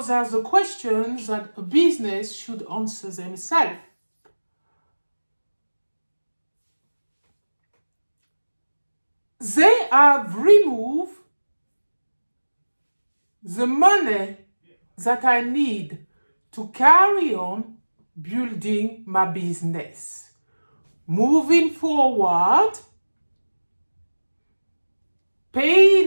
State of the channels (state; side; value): inverted; both; correlation -1.00